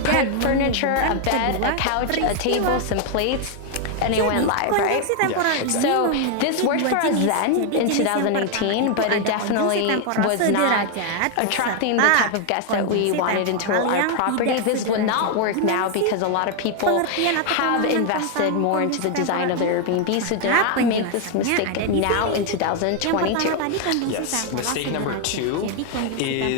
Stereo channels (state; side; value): different; both; correlation 0.00